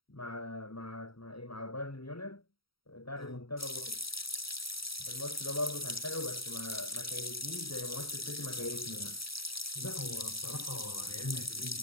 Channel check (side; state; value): right; late; 0.75 ms